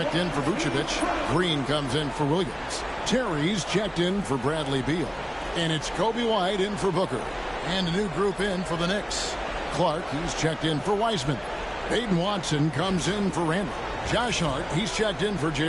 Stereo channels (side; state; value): both; identical; correlation 1.00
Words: in for Vucevic. Green comes in for Williams. Terry's checked in for Bradley Beal. And it's Kobe White in for Booker. And a new group in for the Knicks. Clark, he's checked in for Wiseman. Aiden Watson comes in for Randall. Josh Hart, he's checked in for